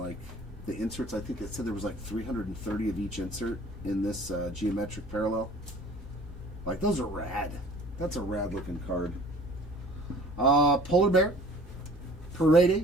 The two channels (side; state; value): both; normal; correlation 0.48